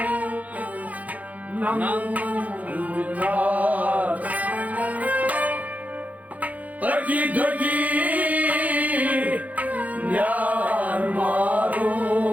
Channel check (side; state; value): left; late; 0.075 ms